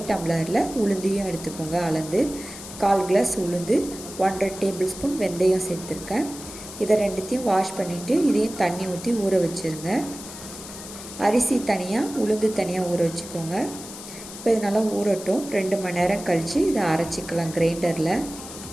டம்ளரில் உளுந்தையும் எடுத்துக்கோங்க. அளந்து 1/4 கிளாஸ் உளுந்து, 1½ டேபிள் ஸ்பூன் வெந்தயம் சேர்த்துருக்கேன். இதை ரெண்டுத்தையும் வாஷ் பண்ணிவிட்டு இதையும் தண்ணி ஊற்றி ஊற வச்சுருங்க. அரிசி தனியாக உளுந்து தனியாக ஊற வச்சுக்கோங்க. இப்போ இது நல்லா ஊறட்டும். 2 மணி நேரம் கழித்து இதை அரைச்சிக்கலாம் கிரைண்டரில்.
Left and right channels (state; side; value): noise; left; hiss, 13 dB below the sound